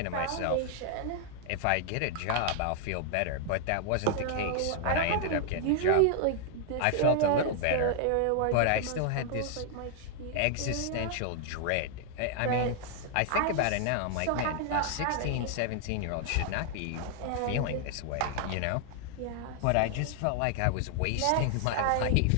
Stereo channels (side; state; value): both; different; correlation 0.00